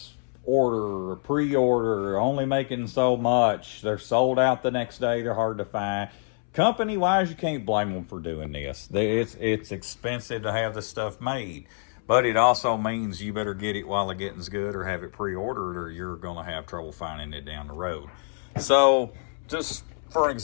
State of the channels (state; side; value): silent; right; 61 dB below the other